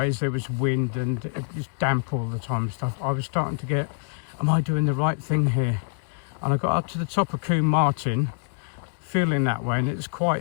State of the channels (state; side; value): silent; right; digital silence